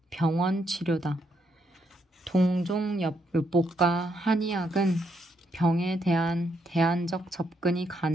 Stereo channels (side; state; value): both; normal; correlation 0.77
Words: 병원 치료다. 동종요법과 한의학은 병에 대한 대안적 접근이